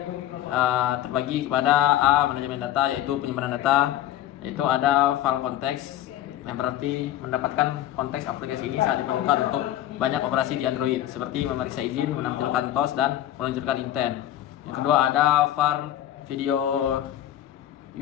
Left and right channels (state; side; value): quieter; right; 12.7 dB